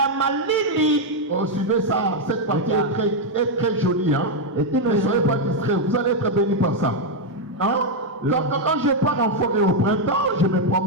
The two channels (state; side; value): normal; both; correlation 0.01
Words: suivez ça, cette partie est très jolie. Hein? Ne soyez pas distraits, vous allez être bénis par ça. Hein? Quand je pars en forêt au printemps, je me